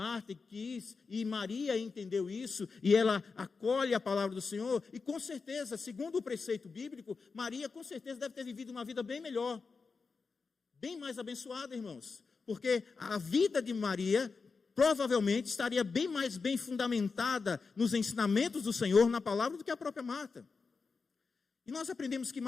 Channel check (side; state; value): right; quieter; 4.7 dB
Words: e Maria entendeu isso, e ela acolhe a palavra do Senhor, e com certeza, segundo o preceito bíblico, Maria com certeza deve ter vivido uma vida bem melhor, bem mais abençoada, irmãos, porque a vida de Maria provavelmente estaria bem mais bem fundamentada nos ensinamentos do Senhor, na palavra, do que a própria Marta. E nós aprendemos que